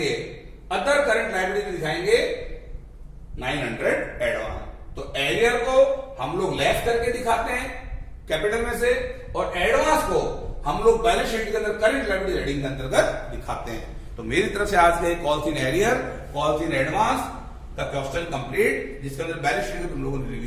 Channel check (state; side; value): identical; both; correlation 1.00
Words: अदर करंट लायबिलिटीज दिखाएंगे 900 एडवांस। तो एरियर को हम लोग लेस करके दिखाते हैं कैपिटल में से, और एडवांस को हम लोग बैलेंस शीट के अंदर करंट लायबिलिटीज हेडिंग के अंतर्गत दिखाते हैं। तो मेरी तरफ से आज के calls in arrear, calls in advance का क्वेश्चन कंप्लीट, जिसके अंदर बैलेंस शीट तुम लोगों ने